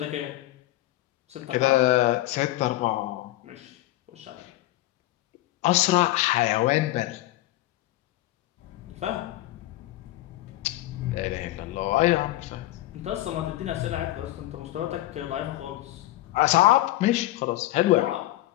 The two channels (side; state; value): right; quieter; 16.4 dB